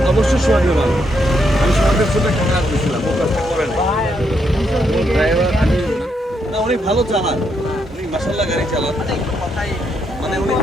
অবশ্যই সোহাগের ভালো, আমি সোহাগের সাথে খাওয়া দিয়েছিলাম, ও কাজটা করে না। ড্রাইভার আমি না, উনি ভালো চালান, উনি মাসাল্লাহ গাড়ি চালান, মানে উনি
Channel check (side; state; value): both; normal; correlation 0.78